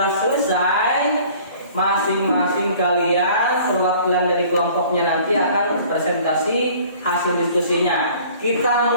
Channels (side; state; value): both; inverted; correlation -0.51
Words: selesai. Masing-masing kalian perwakilan dari kelompoknya nanti akan presentasi hasil diskusinya. Kita